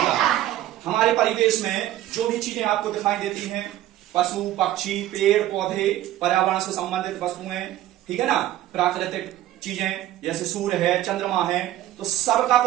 हमारे परिवेश में जो भी चीजें आपको दिखाई देती हैं, पशु पक्षी पेड़ पौधे पर्यावरण से संबंधित वस्तुएं, ठीक है ना, प्राकृतिक चीजें जैसे सूर्य है चंद्रमा है, तो सबका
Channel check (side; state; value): left; quieter; 13.8 dB